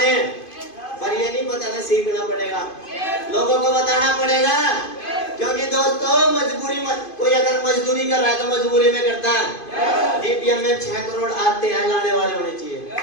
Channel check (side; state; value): right; late; 2.5 ms